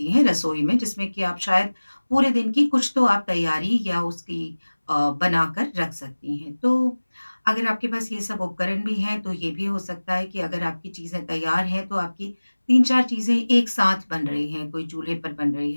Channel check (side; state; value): both; inverted; correlation -1.00